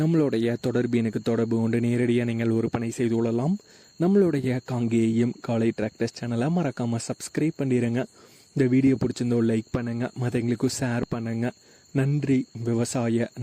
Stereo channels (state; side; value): identical; both; correlation 1.00